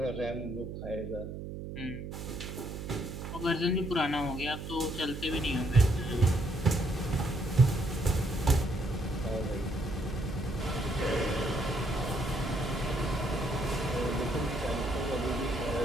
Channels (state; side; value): noise; right; hum, 8 dB below the sound